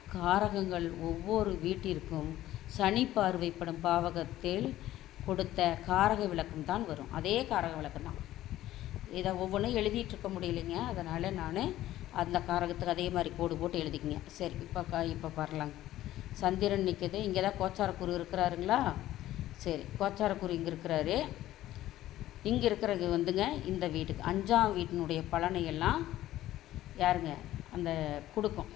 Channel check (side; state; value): right; quieter; 14.3 dB